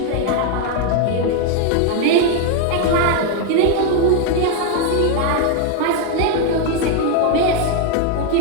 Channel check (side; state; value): both; different; correlation 0.01